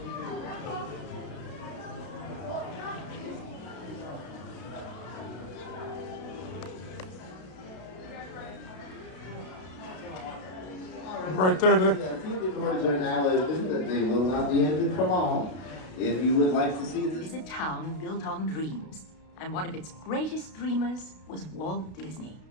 Right there, Dick. The theater doors are now open, but they will not be ended for long. If you would like to see this. Is a town built on dreams, and one of its greatest dreamers was Walt Disney.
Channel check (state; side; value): late; right; 32 ms